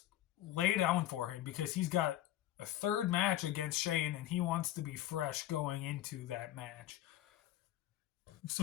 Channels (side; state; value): right; quieter; 13.5 dB